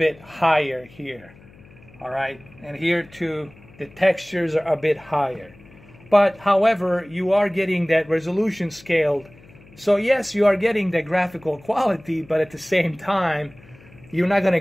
higher here. All right, and here too, the textures are a bit higher. But however, you are getting that resolution scaled. So yes, you are getting the graphical quality, but at the same time, you're not going to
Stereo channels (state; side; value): noise; left; hum, 24 dB below the sound